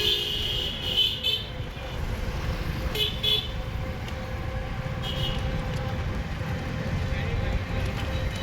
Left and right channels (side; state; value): both; identical; correlation 1.00